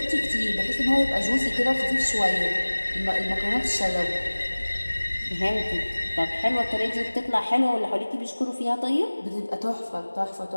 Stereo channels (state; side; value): inverted; both; correlation -1.00